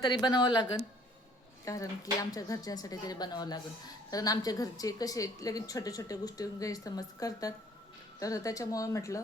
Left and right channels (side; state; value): both; normal; correlation 0.58